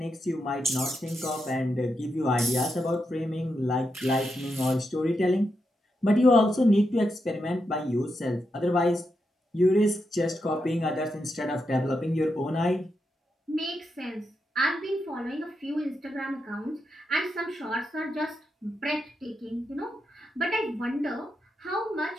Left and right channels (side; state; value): both; normal; correlation 0.85